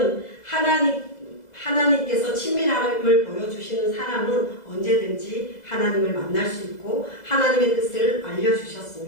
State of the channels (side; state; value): right; late; 2.0 ms